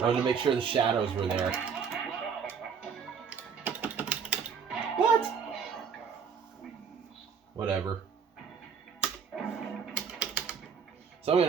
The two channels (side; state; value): left; quieter; 6.4 dB